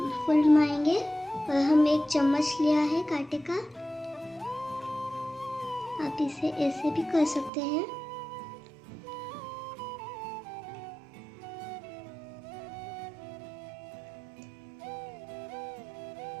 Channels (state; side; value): drops out; left; at 7.5 s